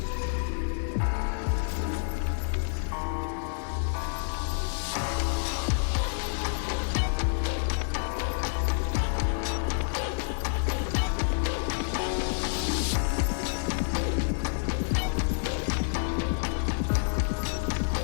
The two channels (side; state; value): right; silent; digital silence